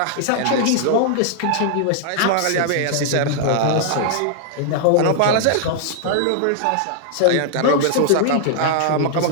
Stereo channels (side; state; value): both; different; correlation -0.01